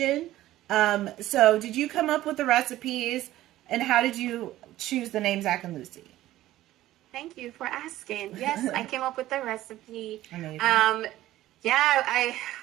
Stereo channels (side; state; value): left; quieter; 14.9 dB